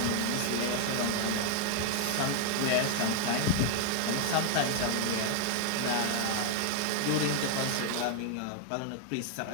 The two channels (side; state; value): both; different; correlation 0.00